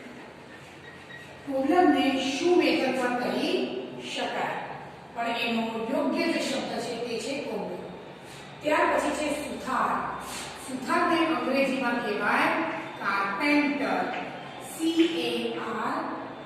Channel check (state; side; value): identical; both; correlation 1.00